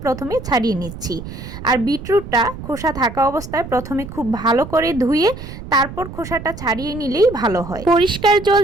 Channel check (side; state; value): right; noise; rumble, 12 dB below the sound